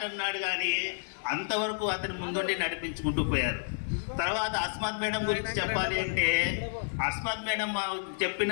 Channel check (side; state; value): right; silent; digital silence